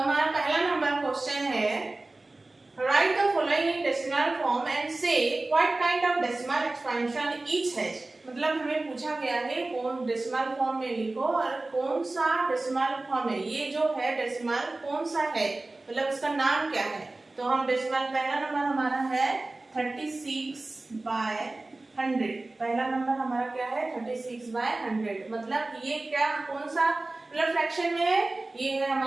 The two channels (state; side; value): quieter; left; 3.0 dB